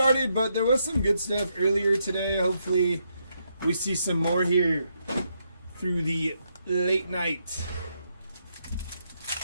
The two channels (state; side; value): inverted; both; correlation -0.79